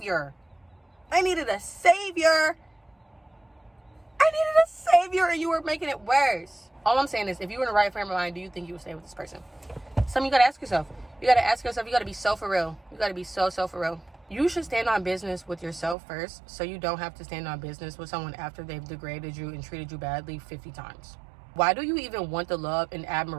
And you were making it worse. All I'm saying is, if you were in the right frame of mind, do you think you would stay with this person? Something you gotta ask yourself. You gotta be so for real. You gotta be so for real. You should stand on business with yourself first, so you don't have to stand on business with someone after they've degraded you and treated you badly 50 times. Why do you even want the love and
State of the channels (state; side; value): drops out; left; at 16.0 s